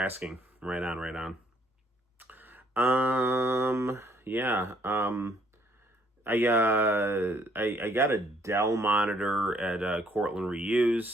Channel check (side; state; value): both; normal; correlation 0.66